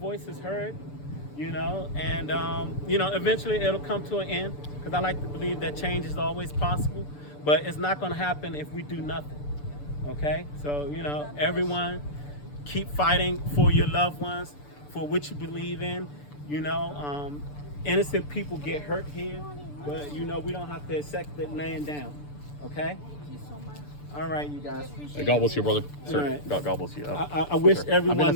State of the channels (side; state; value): right; late; 6.8 ms